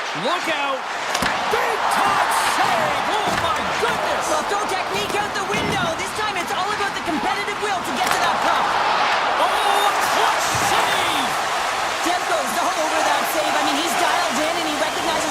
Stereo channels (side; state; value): both; identical; correlation 1.00